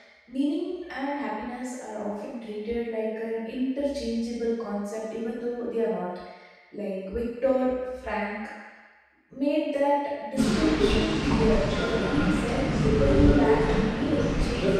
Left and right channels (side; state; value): both; identical; correlation 1.00